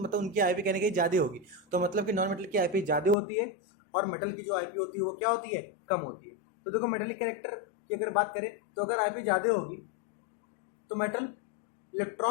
उनकी आईपी कहने की ज़्यादा होगी। तो मतलब कि नॉन मेटल की आईपी ज़्यादा होती है और मेटल की जो आईपी होती है वो क्या होती है, कम होती है। तो देखो मेटेलिक कैरेक्टर की अगर बात करें तो अगर आईपी ज़्यादा होगी तो मेटल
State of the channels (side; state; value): right; drops out; at 3.2 s